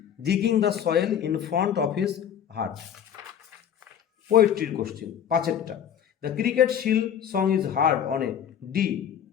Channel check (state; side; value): quieter; right; 9.1 dB